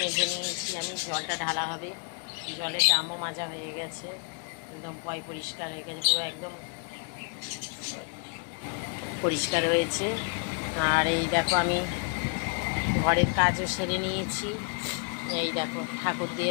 মেজে নিয়েছি আমি, জলটা ঢালা হবে। জলের ড্রামও মাজা হয়ে গেছে, একদম পরিষ্কার হয়ে গেছে, পুরো একদম পরিষ্কার হয়েছে। আর এই দেখো আমি ঘরের কাজও সেরে নিয়েছি। এই দেখো ঠাকুর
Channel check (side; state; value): right; quieter; 39.8 dB